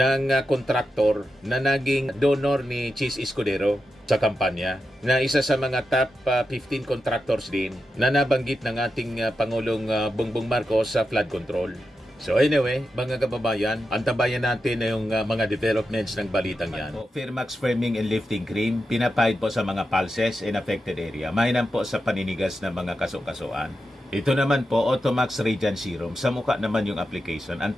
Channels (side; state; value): both; normal; correlation 0.89